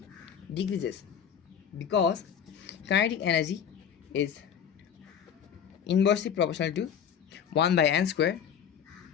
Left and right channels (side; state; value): right; quieter; 8.2 dB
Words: decreases, because kinetic energy is inversely proportional to 1 by n square,